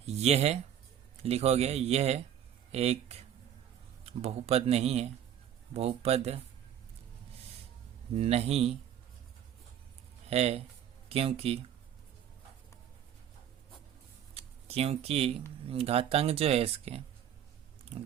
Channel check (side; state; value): left; quieter; 9.8 dB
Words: ये है, लिखोगे ये है एक बहुपद नहीं है, बहुपद नहीं है, क्योंकि घातांक जो है इसके,